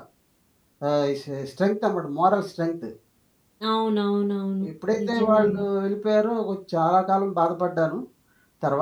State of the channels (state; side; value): identical; both; correlation 1.00